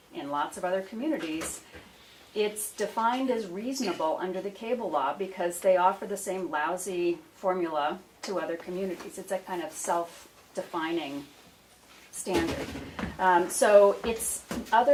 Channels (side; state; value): both; identical; correlation 1.00